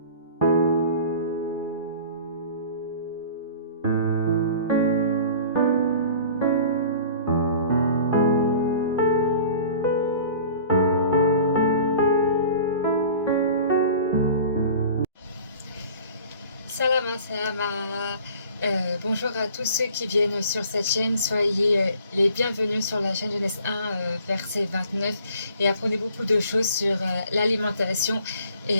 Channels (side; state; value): both; inverted; correlation -0.47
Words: Salama, salama. Bonjour à tous ceux qui viennent sur cette chaîne. Soyez les bienvenus sur la chaîne Genèse 1, verset 29. Et apprenez beaucoup de choses sur l'alimentation et